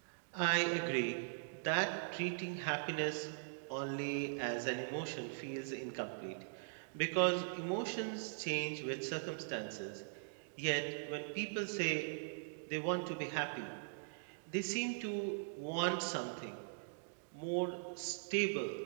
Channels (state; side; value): silent; left; digital silence